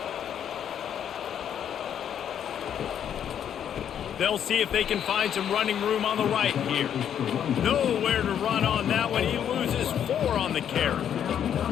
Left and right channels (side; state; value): right; quieter; 9.2 dB